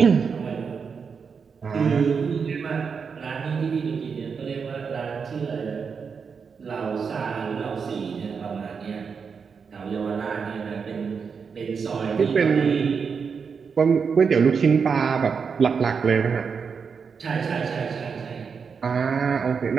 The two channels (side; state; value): left; quieter; 5.9 dB